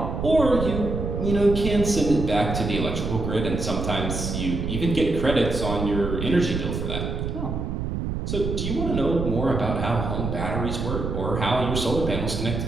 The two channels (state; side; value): noise; right; rumble, 3 dB below the sound